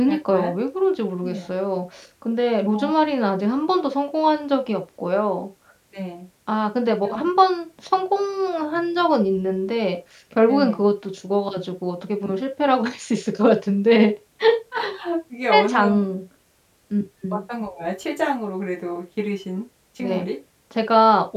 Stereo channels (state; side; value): identical; both; correlation 1.00